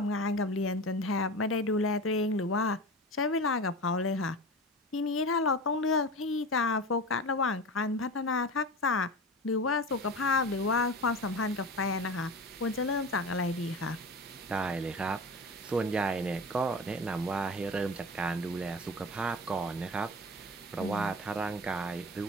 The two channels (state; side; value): normal; both; correlation 0.31